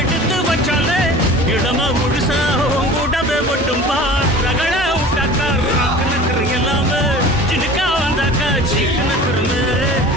எடுத்து வச்சாலே இடமா முழுசா உங்கூடவே மட்டும் பார் ரகட விட்டாக்கா ராக்கு நக்கரு எல்லாமே சினுக்கா வந்தாக்கா சீக்கு நக்கருமே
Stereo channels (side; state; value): both; normal; correlation 0.41